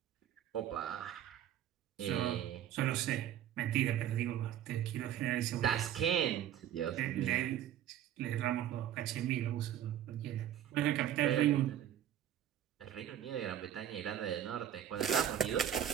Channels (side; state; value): left; quieter; 10.8 dB